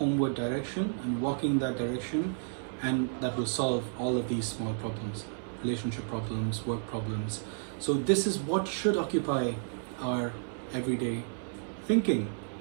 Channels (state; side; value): silent; left; 57 dB below the other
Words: direction and walking that direction, and that will solve all of these small problems, relationship problems, work problems. So this is what should occupy our everyday thinking,